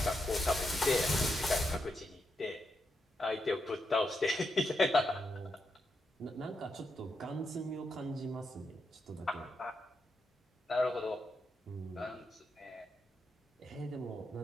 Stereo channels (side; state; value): both; normal; correlation 0.84